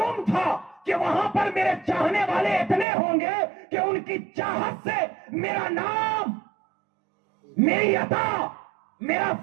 تھا کہ وہاں پر میرے چاہنے والے اتنے ہوں گے کہ ان کی چاہت سے میرا نام، میری عطا، میرا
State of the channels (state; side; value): drops out; left; at 2.9 s